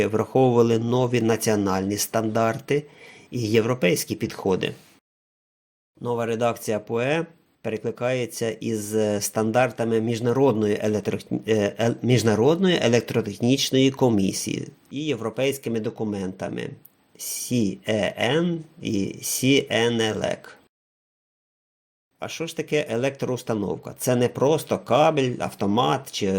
враховували нові національні стандарти і європейські підходи. Нова редакція ПУЕ перекликається із стандартами Міжнародної електротехнічної комісії і європейськими документами CEN і CNELEC. А що ж таке електроустановка? Це не просто кабель, автомат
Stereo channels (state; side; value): identical; both; correlation 1.00